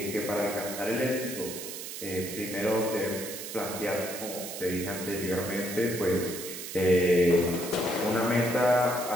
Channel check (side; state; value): right; noise; hiss, 8 dB below the sound